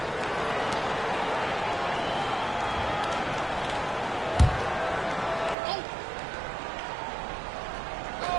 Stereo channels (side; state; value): left; drops out; at 5.6 s